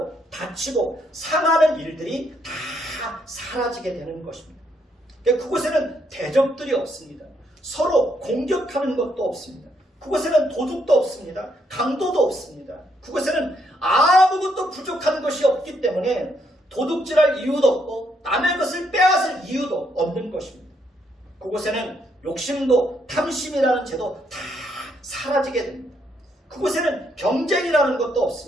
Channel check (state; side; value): normal; both; correlation 0.74